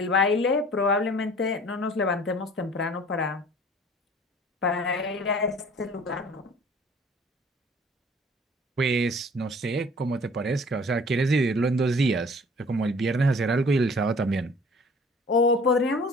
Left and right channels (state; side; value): normal; both; correlation 0.50